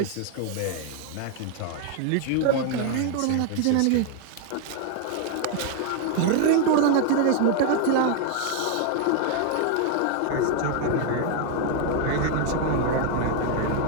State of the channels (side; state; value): both; different; correlation 0.00